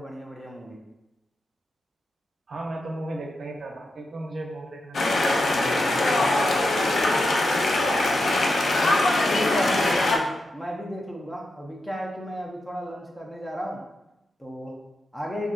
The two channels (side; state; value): both; normal; correlation 0.87